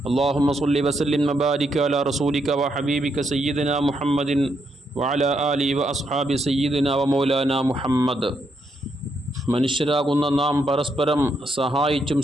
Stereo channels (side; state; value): both; normal; correlation 0.78